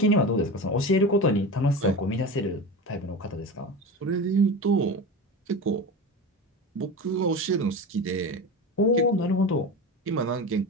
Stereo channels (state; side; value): normal; both; correlation 0.27